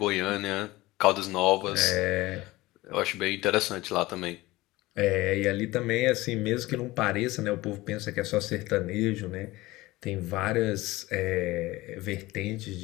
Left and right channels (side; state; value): right; quieter; 19.3 dB